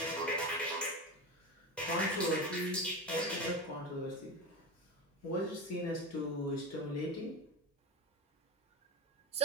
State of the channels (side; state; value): both; normal; correlation 0.22